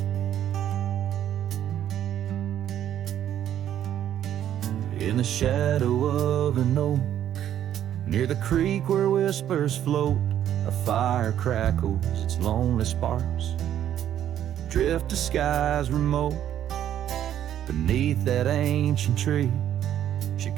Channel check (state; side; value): quieter; left; 10.8 dB